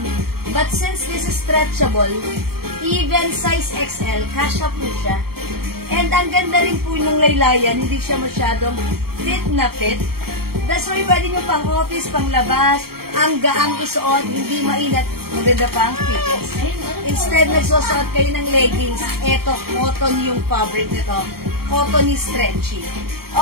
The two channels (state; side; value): late; left; 0.94 ms